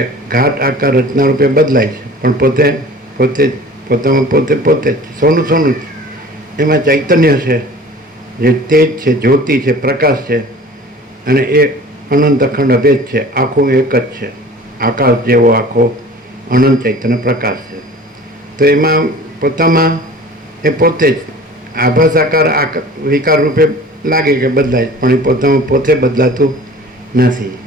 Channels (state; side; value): normal; both; correlation 0.44